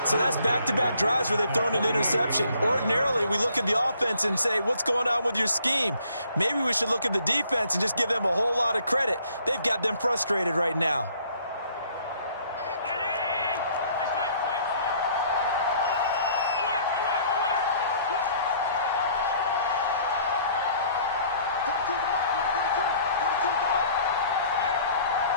So that's back-to-back drives where they've thrown an interception. Ordinarily, we look at the offense and say, what's going on with your scheme? Maybe we should look at the defense and just give them a whole lot of credit. They've got them frustrated right now.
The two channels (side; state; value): both; inverted; correlation -0.59